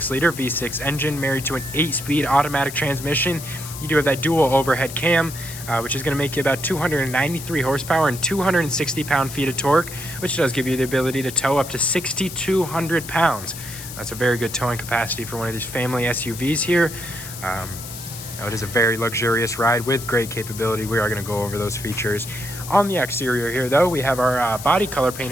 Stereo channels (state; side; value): noise; left; hiss, 11 dB below the sound